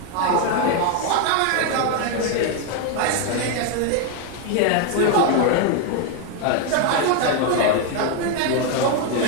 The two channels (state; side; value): different; both; correlation 0.01